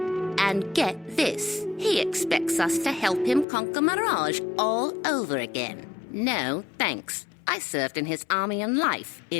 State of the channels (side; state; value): right; drops out; at 3.5 s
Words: And get this, he expects us to help him conquer Mirage all over again. No, thanks. I served in his army in life.